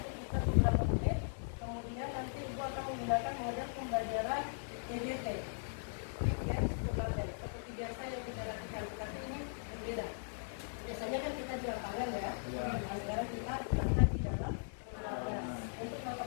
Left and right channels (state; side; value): silent; right; digital silence